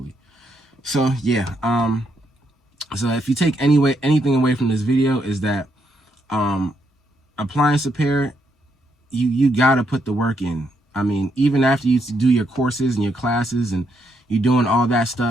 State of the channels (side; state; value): both; normal; correlation 0.77